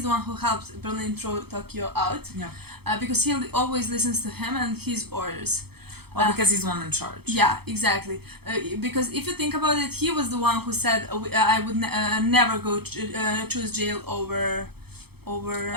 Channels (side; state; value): left; late; 0.97 ms